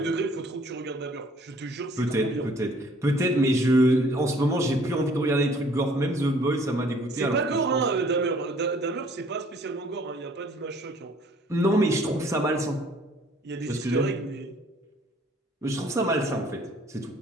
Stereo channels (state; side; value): normal; both; correlation 0.58